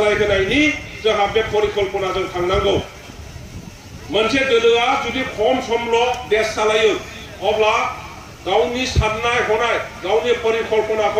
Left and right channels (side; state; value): both; identical; correlation 1.00